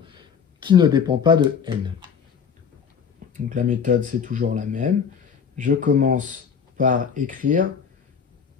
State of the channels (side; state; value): right; quieter; 6.8 dB